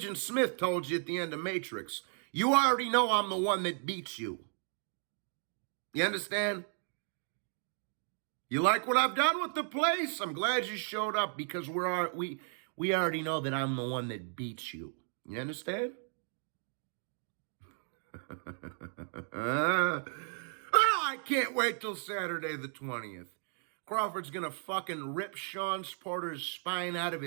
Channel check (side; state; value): left; silent; 55 dB below the other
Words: Smith told you at the end of Matrix, you already know I'm the one that beats you. You understand? You like what I've done with the place? I'm glad you showed up because we already know that I'm the one that beats you. You understand? Oh, I can't wait till Saturday the 20th. Crawford's gonna fucking rip Sean Porter's spine out of